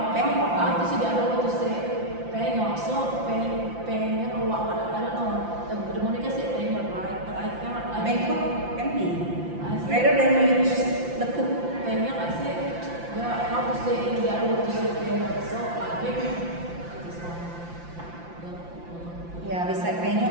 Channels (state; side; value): late; left; 5.8 ms